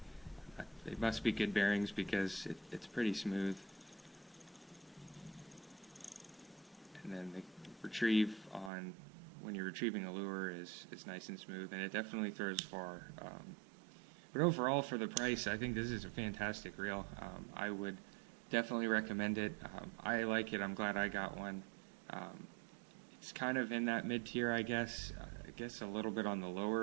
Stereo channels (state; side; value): drops out; left; at 8.7 s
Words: They must be good bearings because it's pretty smooth. And then the retrieve when you're retrieving a lure is nice and smooth, and it definitely throws far. But overall, for the price, I think this is a fantastic reel. I would definitely recommend it. I like it. I'm glad I got one. It's kind of in that mid-tier, I guess. I guess a little bit on the